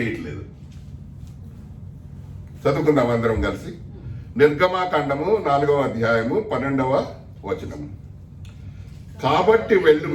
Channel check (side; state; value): both; identical; correlation 1.00